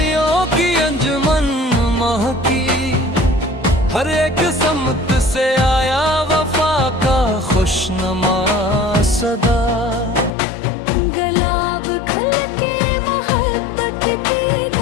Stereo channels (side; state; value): right; drops out; at 10.3 s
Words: की अंजुमन महकी, हर एक समत से आया वफा का खुशनुमा सदा। गुलाब खिल के मोहब्बत की